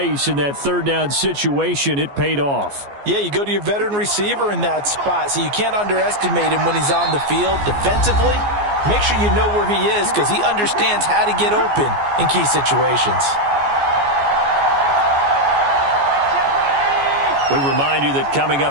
in that 3rd down situation. It paid off. Yeah, you go to your veteran receiver in that spot, so you can't underestimate him when he's on the field defensively. Make sure you know where he is because he understands how to get open in key situations. We remind you that coming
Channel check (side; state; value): left; late; 14 ms